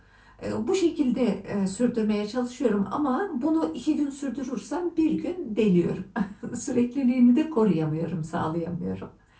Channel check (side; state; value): both; identical; correlation 1.00